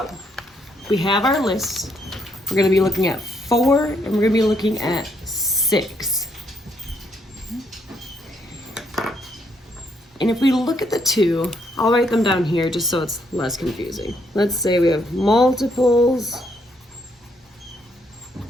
we have our list. We're going to be looking at 4 and we're going to be looking at 6. And if we look at the 2, I'll write them down here just so it's less confusing. Let's say we have multiples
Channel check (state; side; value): normal; both; correlation 0.73